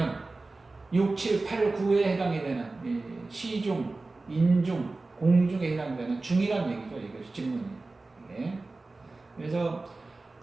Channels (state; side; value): quieter; left; 3.4 dB